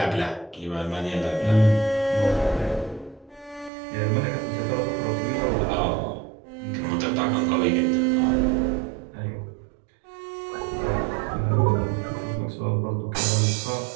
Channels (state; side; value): drops out; left; at 3.7 s